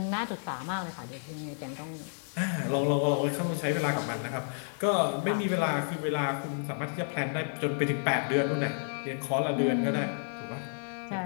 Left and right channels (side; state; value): right; silent; digital silence